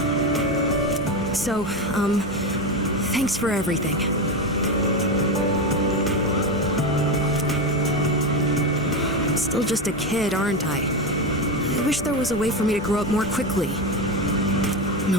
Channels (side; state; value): both; normal; correlation 0.15